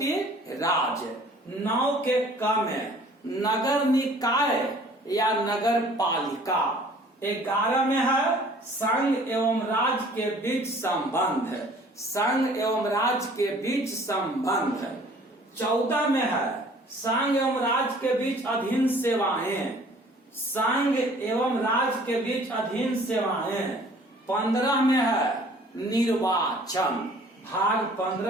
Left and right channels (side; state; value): both; normal; correlation 0.53